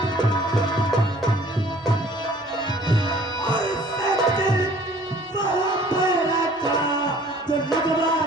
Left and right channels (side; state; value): both; normal; correlation 0.54